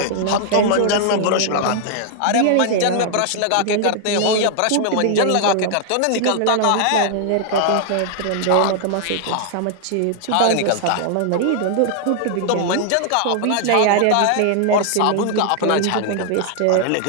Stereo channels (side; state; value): both; different; correlation 0.00